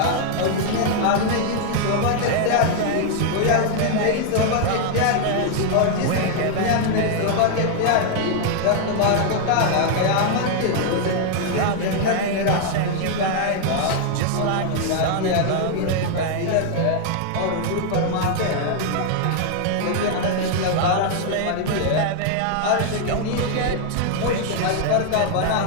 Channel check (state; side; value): different; both; correlation 0.00